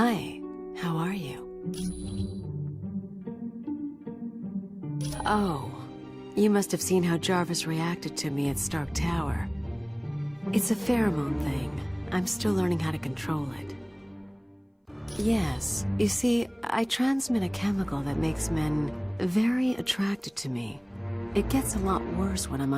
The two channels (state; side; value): identical; both; correlation 1.00